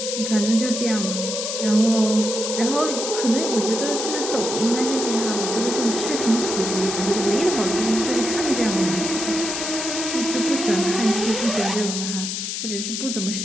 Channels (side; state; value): left; noise; hiss, 4 dB below the sound